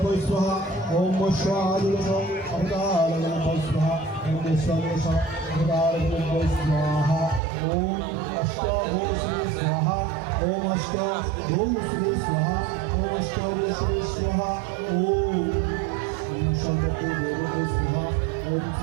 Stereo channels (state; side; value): drops out; left; at 7.4 s